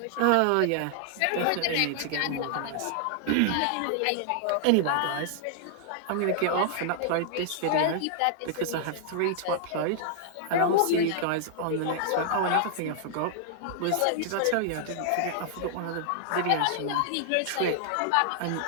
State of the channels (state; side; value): different; both; correlation -0.01